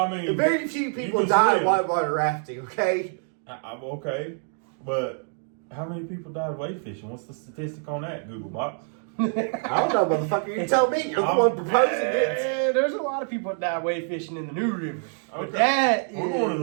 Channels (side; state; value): left; silent; 56 dB below the other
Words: mean, very few you people can die swim. whitewater rafting, okay? I'm okay, but how many people died wade fishing? What's the statistic on that, Google Box? I don't know, motherfucker. You tell me. You're the one proposing it. There's a lot of people that die wade fishing in the New River. But Okay. that We're is... going to